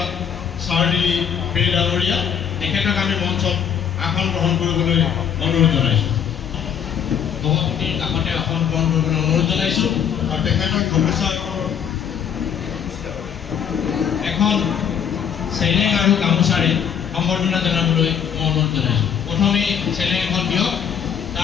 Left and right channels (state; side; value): quieter; right; 8.3 dB